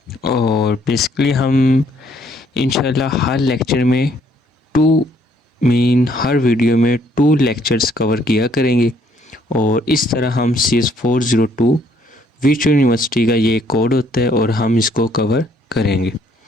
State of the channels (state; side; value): normal; both; correlation 0.66